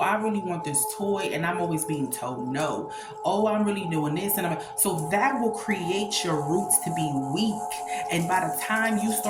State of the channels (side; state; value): both; identical; correlation 1.00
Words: really want this toy, and I'm always being told no. Oh, I'm really doing this, and so that will create your roots to be weak. And by the time you